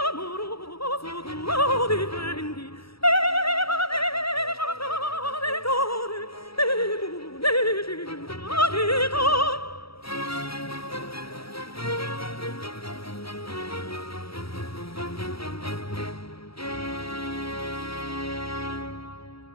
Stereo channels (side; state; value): right; late; 0.75 ms